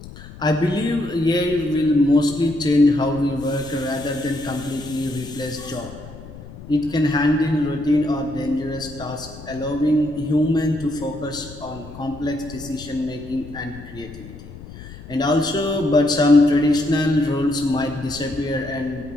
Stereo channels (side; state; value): left; noise; rumble, 16 dB below the sound